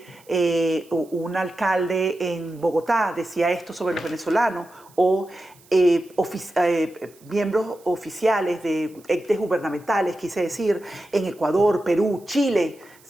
un alcalde en Bogotá decía esto sobre los venezolanos, o miembros oficiales de entes gubernamentales, quise decir, en Ecuador, Perú, Chile,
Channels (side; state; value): right; noise; hiss, 28 dB below the sound